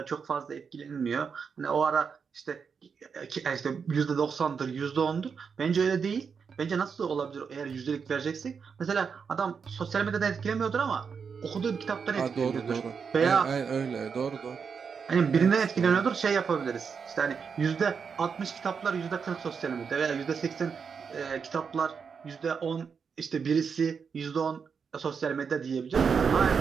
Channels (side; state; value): left; quieter; 6.1 dB